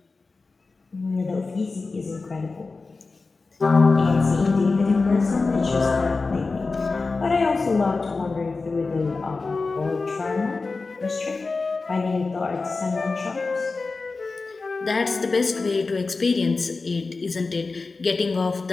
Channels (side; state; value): right; quieter; 3.9 dB